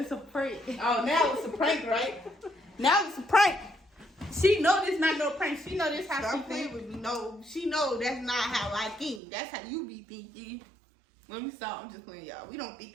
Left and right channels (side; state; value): left; drops out; at 9.2 s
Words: a prank. Oh, now it's a prank, right? Now it's a prank. She know this not no prank. She know this how Stop she playing think. with me. No, she know that's not how I think. That's how you be thinking. Let me stop. I'm just playing, y'all. We don't